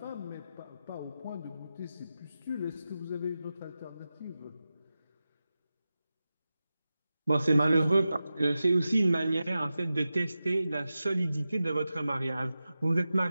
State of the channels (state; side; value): inverted; both; correlation -0.93